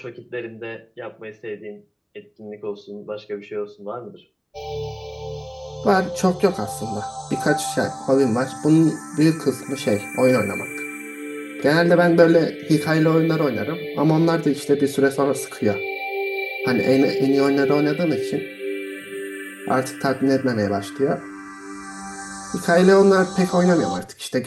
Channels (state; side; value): identical; both; correlation 1.00